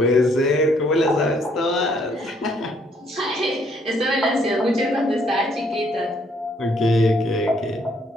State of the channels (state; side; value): normal; both; correlation 0.67